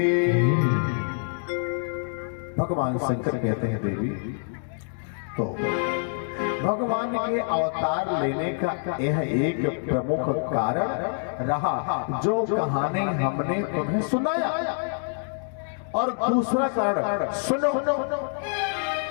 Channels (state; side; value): silent; right; digital silence